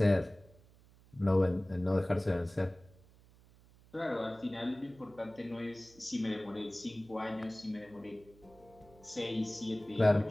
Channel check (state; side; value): noise; right; hum, 26 dB below the sound